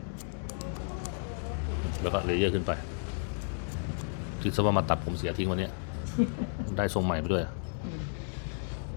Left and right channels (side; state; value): right; silent; 56 dB below the other